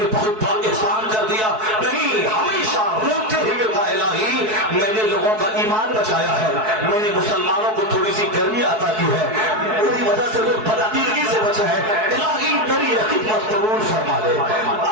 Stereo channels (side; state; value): left; late; 4.6 ms